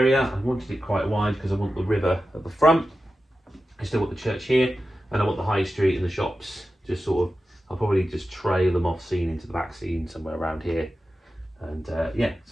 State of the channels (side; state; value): both; normal; correlation 0.92